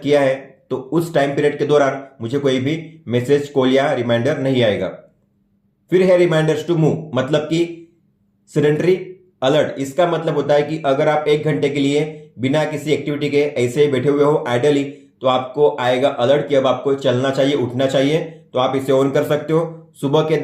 किया है, तो उस टाइम पीरियड के दौरान मुझे कोई भी मैसेज, कॉल या रिमाइंडर नहीं आएगा। फिर है रिमाइंडर्स टू मूव, मतलब कि सेडेंटरी अलर्ट। इसका मतलब होता है कि अगर आप 1 घंटे के लिए बिना किसी एक्टिविटी के ऐसे ही बैठे हुए हो आइडली, तो आपको आएगा अलर्ट कि अब आपको चलना चाहिए, उठना चाहिए। तो आप इसे ऑन कर सकते हो। सुबह के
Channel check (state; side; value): identical; both; correlation 1.00